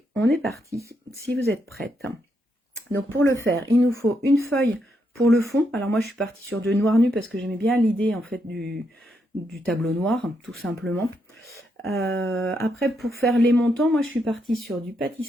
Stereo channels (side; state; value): both; normal; correlation 0.79